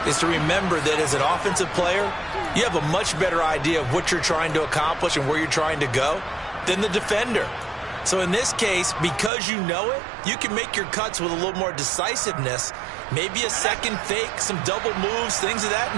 is to remember that as an offensive player, you have a much better idea of what you're trying to accomplish and where you're trying to go than the defender. So in this case, because you know it, you can make your cuts with a little more decisiveness, maybe a second fake, some double moves, things of that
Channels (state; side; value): drops out; left; at 9.3 s